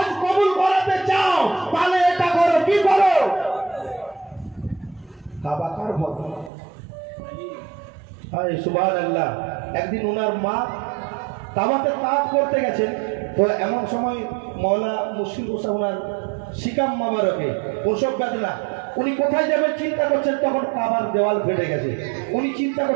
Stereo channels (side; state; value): left; drops out; at 6.5 s